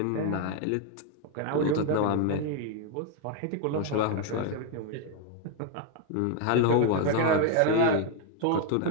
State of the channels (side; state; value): both; different; correlation 0.01